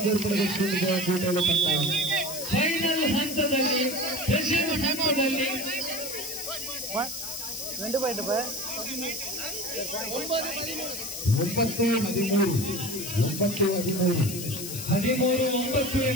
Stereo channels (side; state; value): left; noise; hiss, 7 dB below the sound